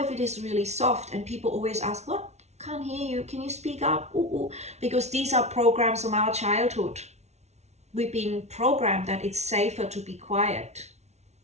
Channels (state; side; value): late; left; 0.32 ms